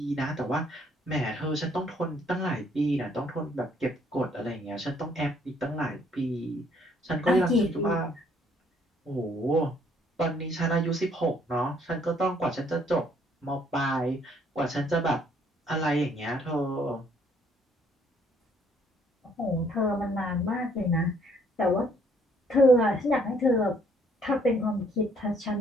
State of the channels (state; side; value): normal; both; correlation 0.65